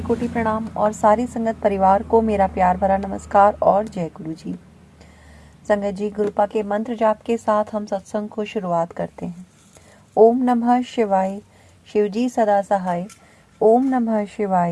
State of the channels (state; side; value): identical; both; correlation 1.00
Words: प्रणाम और सारी संगत परिवार को मेरा प्यार भरा नमस्कार और जय गुरु जी। संगत जी, गुरुपा के मंत्र जाप के साथ हम सत्संग को शुरुआत करते हैं। ओम नमः शिवाय, शिव जी सदा सहाय। ओम नमः